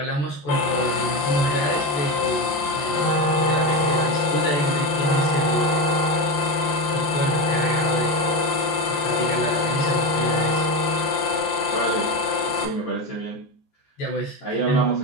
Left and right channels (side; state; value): right; late; 14 ms